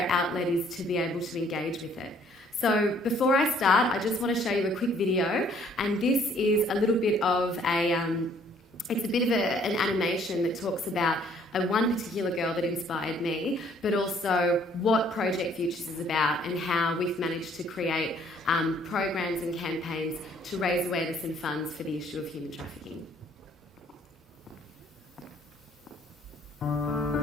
outlet is to be able to engage with it. So before I start, I just want to show you a quick video, and this is a little bit of an animation that talks about one particular girl that inspired me, but also what Project Futures is about and how we've managed to create programs and campaigns to raise awareness and funds for the issue of human trafficking.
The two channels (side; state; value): both; normal; correlation 0.61